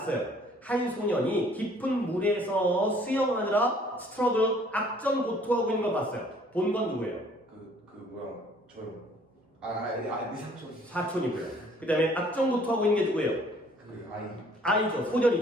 한 소년이 깊은 물에서 수영하느라 스트러글 악전 고투하고 있는 걸 봤어요. 본 건 누구예요? 그 뭐야 저요. 네 삼촌. 사촌이고요. 그 다음에 악전 고투하고 있는 게 누구예요? 그 아이. 아이죠.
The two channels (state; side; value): normal; both; correlation 0.58